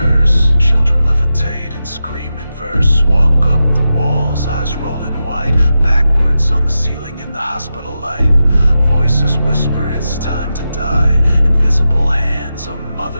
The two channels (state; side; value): inverted; both; correlation -0.90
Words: Children levitate and scream in verse. Walk up the walls, eyes rolling white. Backwards on the ceiling in the hospital light. Voices whisper, it's time to die. Invisible hands, a